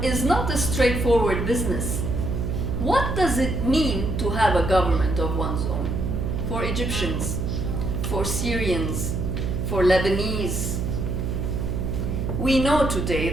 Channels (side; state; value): right; noise; hum, 1 dB below the sound